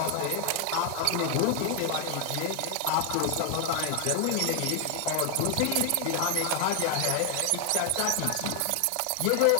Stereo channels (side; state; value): both; different; correlation 0.00